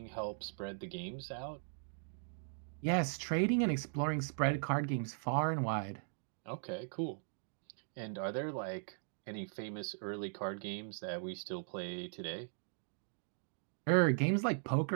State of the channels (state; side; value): silent; left; digital silence